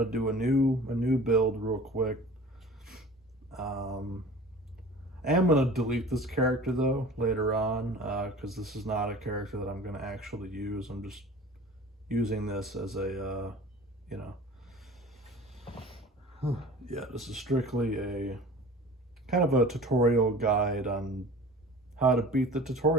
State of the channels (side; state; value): both; normal; correlation 0.41